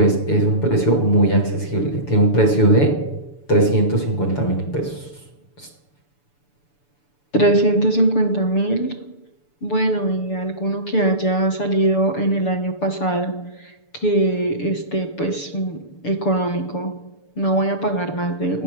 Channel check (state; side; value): late; right; 6.9 ms